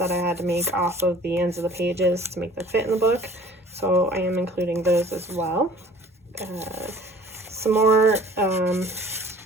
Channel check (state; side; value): normal; both; correlation 0.50